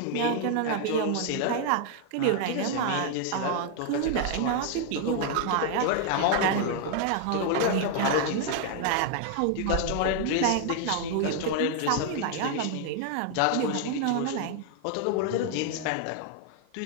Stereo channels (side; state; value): both; different; correlation 0.00